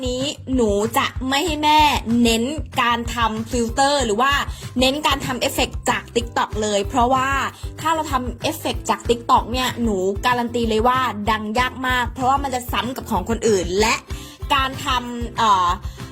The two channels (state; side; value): identical; both; correlation 1.00